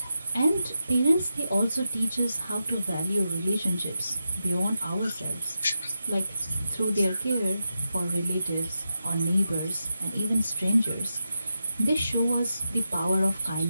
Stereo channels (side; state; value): both; inverted; correlation -0.88